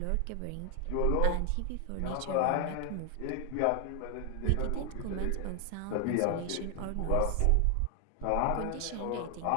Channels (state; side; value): different; both; correlation 0.00